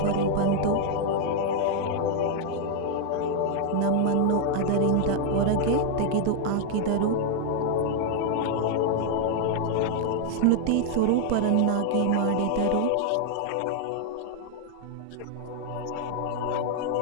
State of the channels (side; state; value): both; different; correlation 0.00